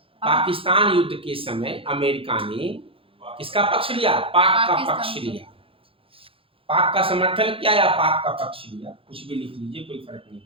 पाकिस्तान युद्ध के समय अमेरिका ने किसका पक्ष लिया? पाक का पक्ष लिया। पाक का समर्थन किया या पाक का पक्ष लिया, कुछ भी लिख लीजिए, कोई फर्क नहीं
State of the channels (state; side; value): late; left; 0.27 ms